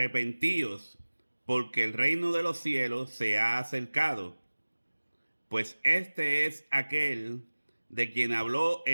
porque el reino de los cielos se ha acercado. Pues este es aquel de quien habló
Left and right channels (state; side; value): inverted; both; correlation -1.00